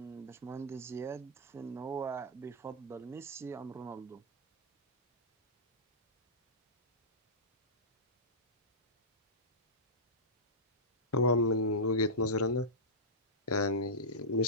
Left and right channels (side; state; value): both; normal; correlation -0.15